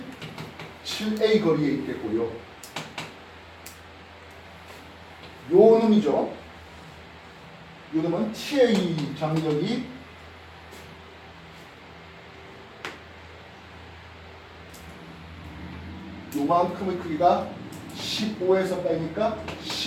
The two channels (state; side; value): identical; both; correlation 1.00